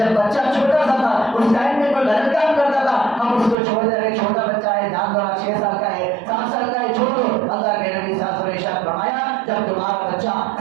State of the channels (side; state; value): left; drops out; at 3.6 s